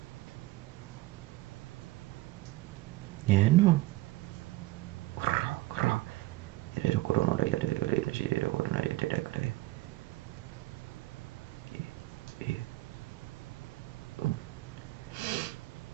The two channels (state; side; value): quieter; left; 18.6 dB